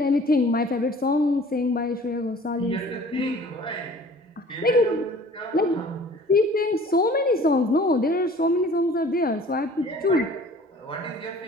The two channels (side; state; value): both; normal; correlation 0.49